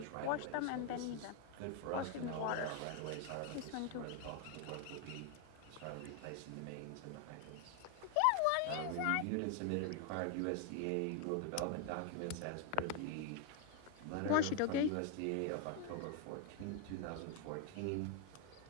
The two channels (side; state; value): both; different; correlation 0.00